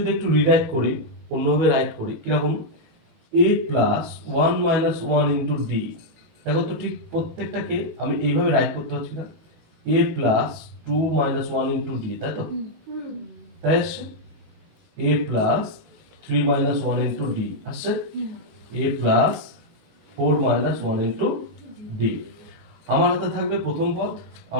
একটু রিরাইট করি, অন্যভাবে রাইট করি, কিরকম? এ প্লাস 1 মাইনাস 1 ইন্টু ডি। দেখো তো ঠিক প্রত্যেকটাকে আমি এইভাবে রাইট করতে পারছি না? এ প্লাস 2 মাইনাস 1 ইন্টু ডি, তাই তো? তাই আসছে a plus 3 minus 1 into D আসছে, a plus 4 minus 1 into D. আমার হাতে থাকবে প্রথম পদ,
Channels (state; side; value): late; left; 19 ms